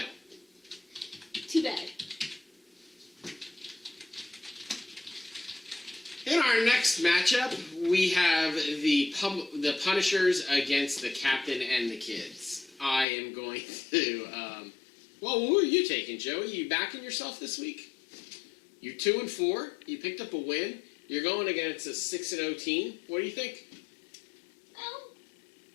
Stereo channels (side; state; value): right; drops out; at 13.1 s